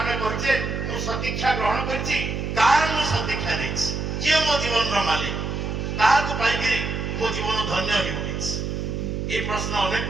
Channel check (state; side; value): noise; right; hum, 3 dB below the sound